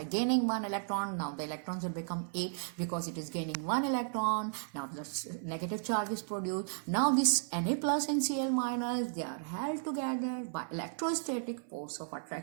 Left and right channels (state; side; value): silent; left; 55 dB below the other